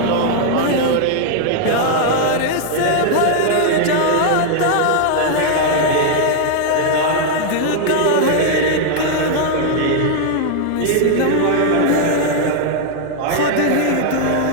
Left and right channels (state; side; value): different; both; correlation 0.00